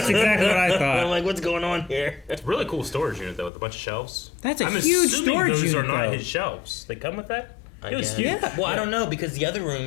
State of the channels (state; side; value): drops out; right; at 3.5 s